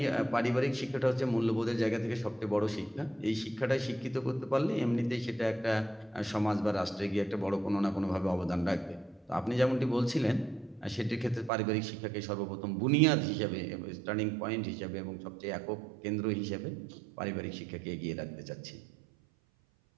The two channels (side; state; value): left; drops out; at 11.5 s